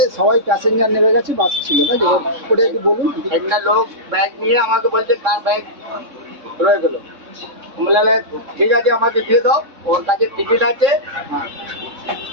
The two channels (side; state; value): left; late; 3.6 ms